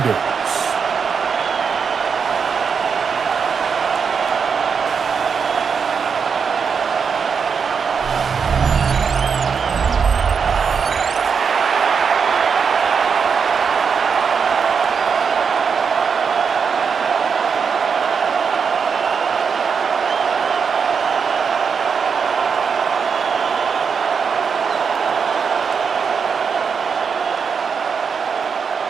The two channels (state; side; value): quieter; left; 6.1 dB